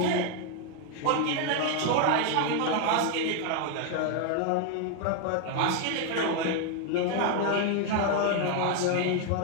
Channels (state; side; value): different; both; correlation 0.01